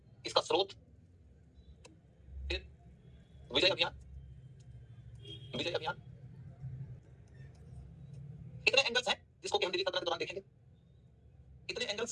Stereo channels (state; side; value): identical; both; correlation 1.00